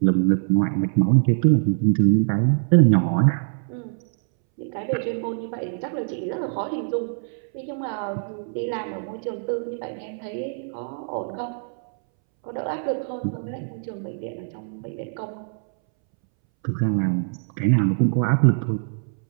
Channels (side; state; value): left; silent; 63 dB below the other